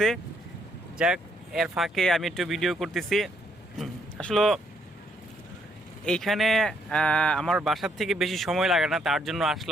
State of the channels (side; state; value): both; normal; correlation 0.72